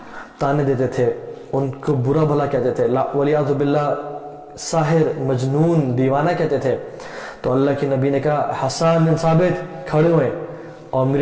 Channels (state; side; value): identical; both; correlation 1.00